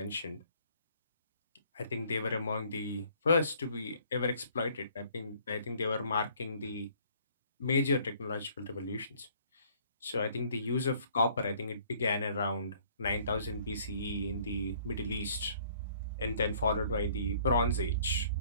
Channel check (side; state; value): both; inverted; correlation -0.59